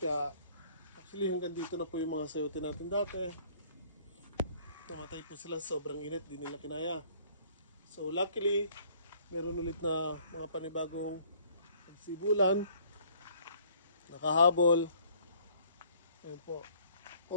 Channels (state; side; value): inverted; both; correlation -0.58